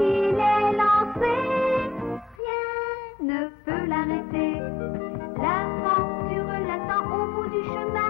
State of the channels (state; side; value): drops out; right; at 2.4 s